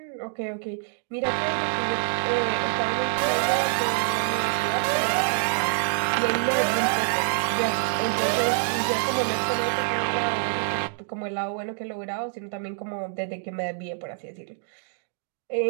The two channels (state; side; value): silent; left; 61 dB below the other